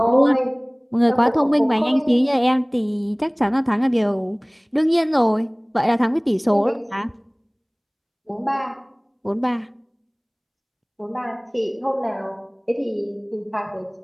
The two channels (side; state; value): both; identical; correlation 1.00